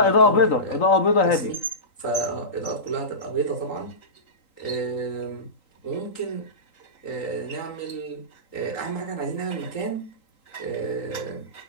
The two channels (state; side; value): late; right; 3.8 ms